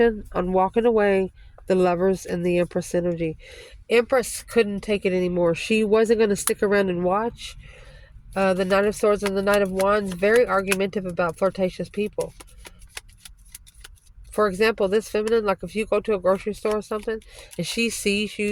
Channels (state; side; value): identical; both; correlation 1.00